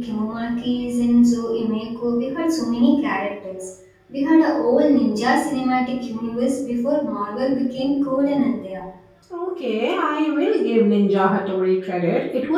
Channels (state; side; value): identical; both; correlation 1.00